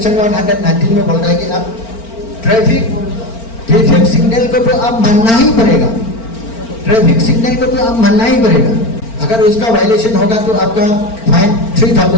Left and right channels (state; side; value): late; right; 4.4 ms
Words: 119 में बोलता है कि आप ट्रैफिक सिग्नल को तो आप मानना ही पड़ेगा, ट्रैफिक सिग्नल को तो आप मानना ही पड़ेगा। अगर उसका वायलेशन होगा तो आपका फाइन